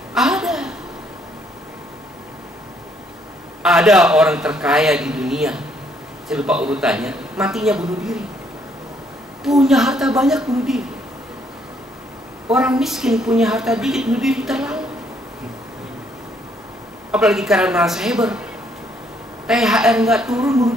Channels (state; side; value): normal; both; correlation 0.68